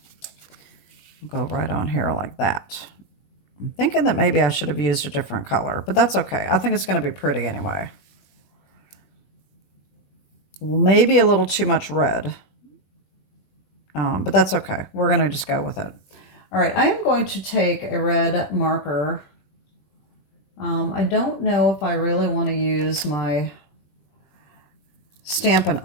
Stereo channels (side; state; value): right; late; 20 ms